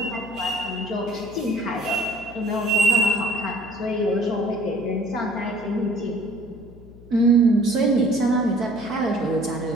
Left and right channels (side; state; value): left; noise; hum, 20 dB below the sound